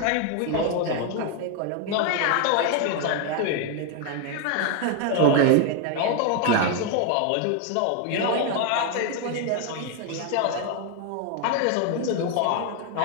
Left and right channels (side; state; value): both; different; correlation 0.01